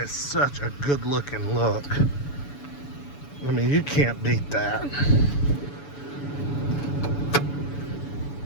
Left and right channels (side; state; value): right; late; 7.0 ms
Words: such a good looking look. I mean, you can't beat that.